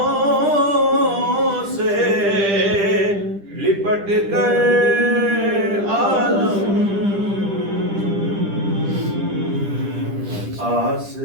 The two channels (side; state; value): left; late; 10 ms